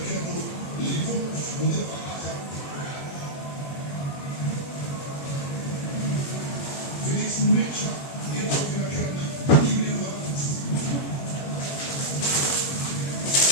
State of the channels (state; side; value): late; right; 21 ms